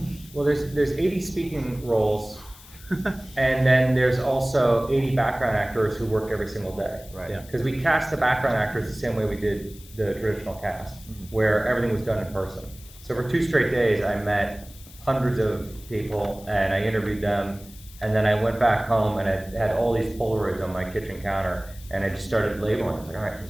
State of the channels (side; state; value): left; noise; hiss, 21 dB below the sound